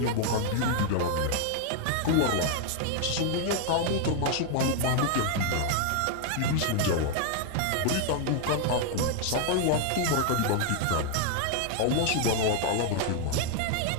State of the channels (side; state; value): both; different; correlation 0.00